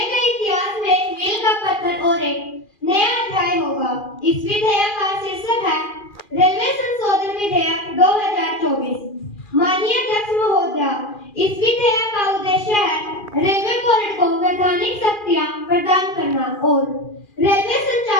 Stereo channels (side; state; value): right; late; 2.4 ms